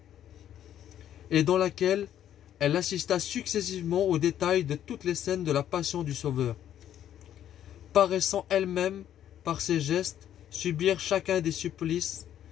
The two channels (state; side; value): quieter; right; 10.8 dB